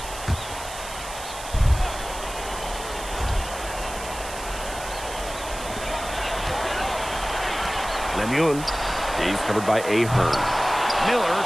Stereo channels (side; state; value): right; noise; hiss, 12 dB below the sound